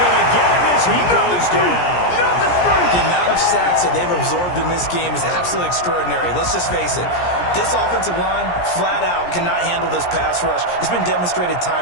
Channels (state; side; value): late; right; 17 ms